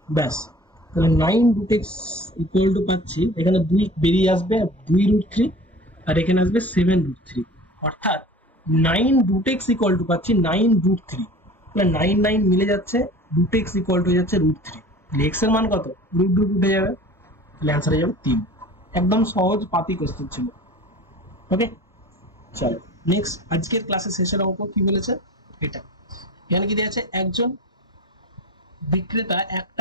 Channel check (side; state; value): both; normal; correlation 0.40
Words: ব্যাস। তাহলে 9 রুট এক্স ইকুয়াল টু পাচ্ছি, এখানে 2 বেরিয়ে আসবে, 2 রুট 3, আর এখানে আসবে 7 রুট 3, অর্থাৎ 9 রুট এক্স ইকুয়াল টু পাচ্ছি 9 রুট 3। তাহলে 9 9 মিলে যাচ্ছে, রুট এক্স ইকুয়াল টু হয়ে যাচ্ছে রুট 3। তাহলে এক্স এর মান কত? রুট রুট উঠে যাবে, তাহলে অ্যান্সার হয়ে যাবে 3। একদম সহজ পাতি কোশ্চেন ছিল। ওকে, চলো নেক্সট। আজকের ক্লাসের শেষের অঙ্ক কি বলেছে এটা। এখানে কি দেওয়া আছে? একজন বিক্রেতা 1